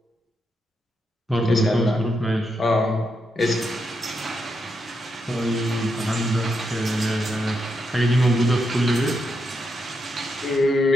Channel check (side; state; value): both; normal; correlation 0.82